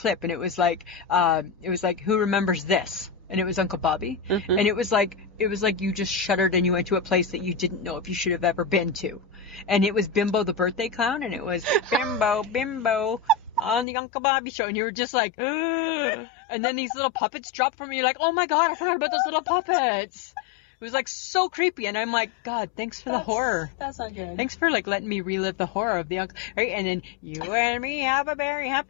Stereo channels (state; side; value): drops out; right; at 13.9 s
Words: and it was like, who remembers this? And it was Uncle Bobby. Mm-hmm. And it was like you just shuddered and you went to a place that you didn't know if you should have ever been to. And it was Bimbo the birthday clown, and it was Bimbo on the Uncle Bobby show, and you were just like, ugh. And then these little puppets dropped from you, like, oh my God, I forgot about those little puppets. It was like so creepy, and I'm like, God, thanks for the horror. That's not good. Thanks for like letting me relive the horror of the uncle, right? And then you and me have a very